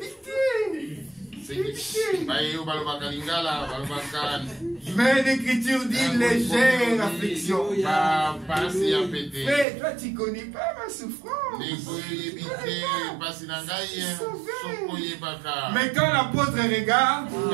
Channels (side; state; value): left; drops out; at 9.7 s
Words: Mais l'Écriture dit légère affliction. Mais toi tu connais pas ma souffrance. Mais quand l'apôtre regarde,